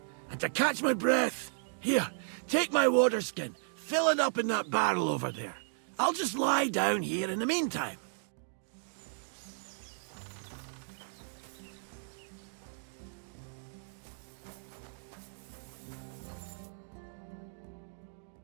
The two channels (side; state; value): left; silent; digital silence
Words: And to catch my breath, here, take my water skin. Fill it up in that barrel over there. I'll just lie down here in the meantime.